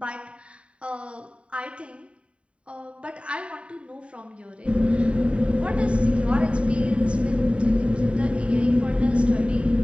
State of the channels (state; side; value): late; left; 0.060 ms